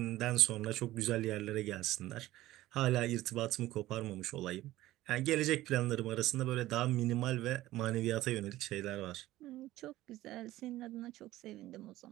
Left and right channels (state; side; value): quieter; left; 16.0 dB